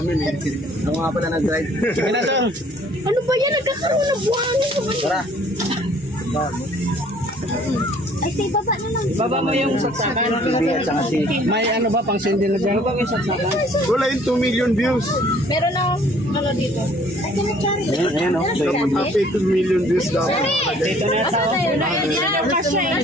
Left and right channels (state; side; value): normal; both; correlation 0.57